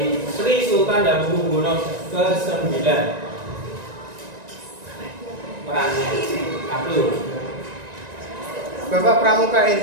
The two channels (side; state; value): left; late; 1.9 ms